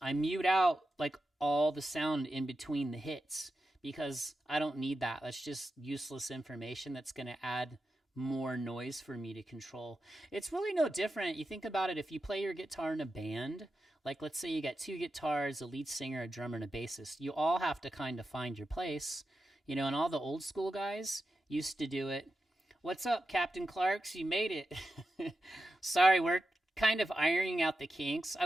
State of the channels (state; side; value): normal; both; correlation 0.90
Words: I mute out like all the sound in between the hits because I don't need that. That's just useless information that's going to add more noise for me to control. It's really no different. You think about it, if you play your guitar in a band, like let's say you got 2 guitars, a lead singer, a drummer, and a bassist, you all have to kind of find your place, and all the old school guys used to do it. What's up, Captain Clarks? You made it. Sorry, we're kind of ironing out the kinks. I